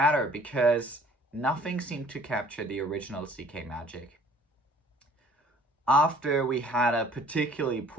because nothing seemed to capture the original CK magic. After we had a particularly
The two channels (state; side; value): normal; both; correlation 0.54